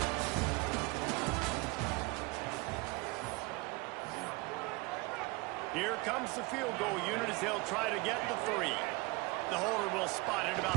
here comes the field goal unit as they'll try to get the 3. The holder will spot it about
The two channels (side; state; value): left; quieter; 25.0 dB